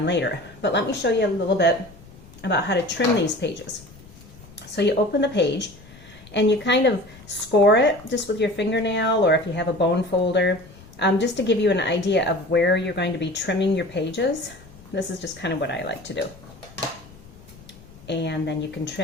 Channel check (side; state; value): left; noise; rumble, 21 dB below the sound